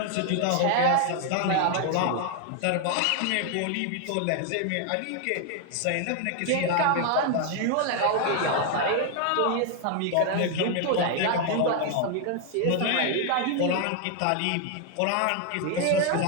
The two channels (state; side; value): different; both; correlation 0.00